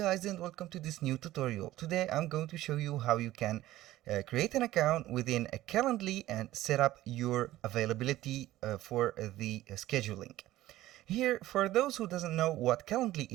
and welcome to this new tutorial. Today I'm going to show you how you can create an account within a Calendly and set up your availability for the scheduling. Here, for those who doesn't know what Calendly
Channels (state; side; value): quieter; left; 15.5 dB